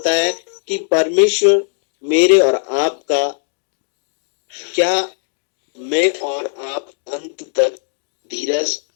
है कि परमेश्वर मेरे और आपका, क्या मैं और आप अंत तक धीरज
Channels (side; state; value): right; silent; 64 dB below the other